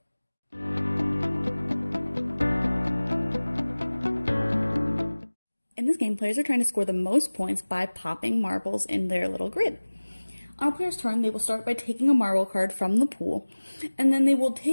In this game, players are trying to score the most points by popping marbles in their little grid. On a player's turn, they will start by taking a marble card from the pool, and then they will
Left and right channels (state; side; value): inverted; both; correlation -1.00